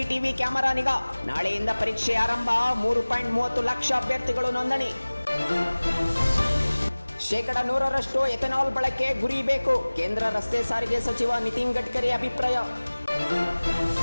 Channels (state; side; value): inverted; both; correlation -1.00